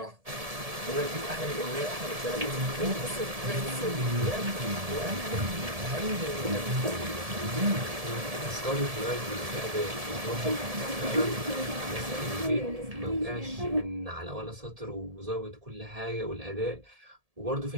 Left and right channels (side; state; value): left; late; 1.7 ms